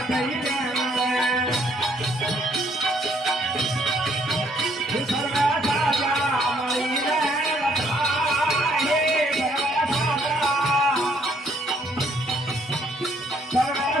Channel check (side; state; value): both; normal; correlation 0.67